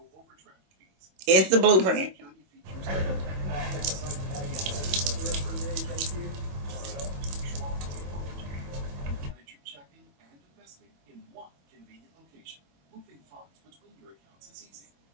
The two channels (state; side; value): late; left; 21 ms